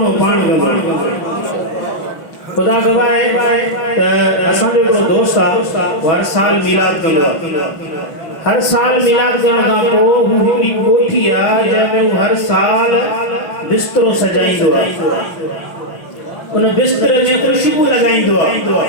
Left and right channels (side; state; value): right; late; 5.8 ms